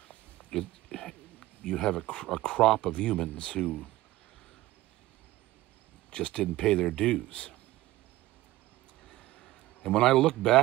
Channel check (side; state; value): left; quieter; 17.1 dB